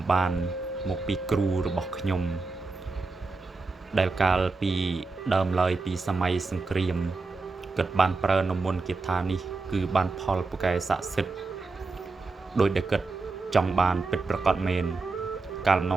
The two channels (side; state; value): left; quieter; 3.8 dB